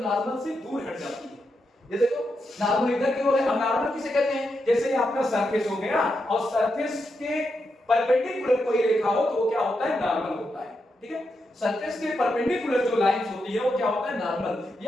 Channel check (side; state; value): both; normal; correlation 0.85